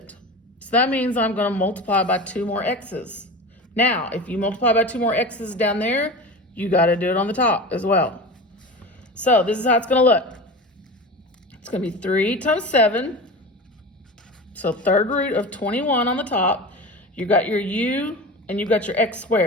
So that means I'm going to multiply by 2 more x's. Now, if you multiply by 2 more x's down there, you got to do it on the top as well. So this is how it's going to look. It's going to be 3 times 7. So third root of 21 on the top. You got your u and you got your x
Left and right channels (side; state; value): both; normal; correlation 0.30